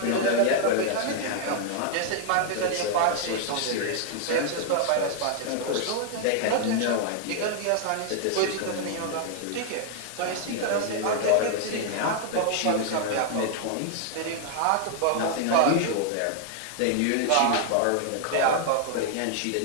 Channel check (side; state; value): both; different; correlation 0.00